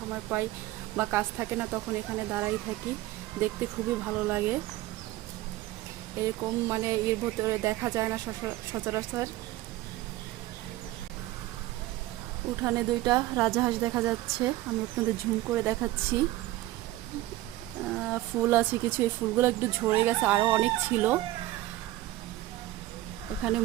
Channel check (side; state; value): left; quieter; 16.6 dB